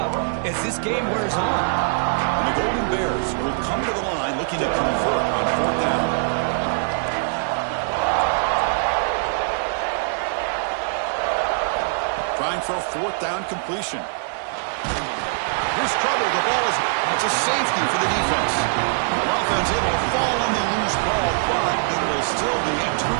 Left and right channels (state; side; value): silent; left; digital silence